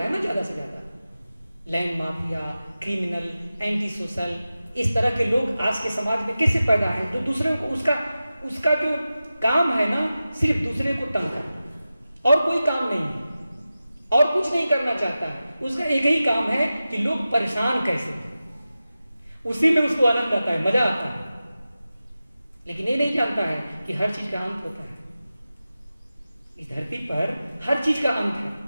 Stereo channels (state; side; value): inverted; both; correlation -0.94